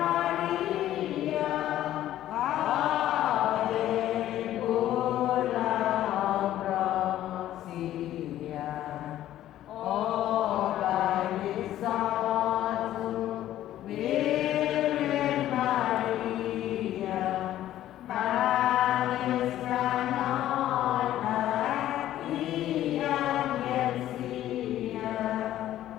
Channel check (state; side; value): quieter; right; 13.0 dB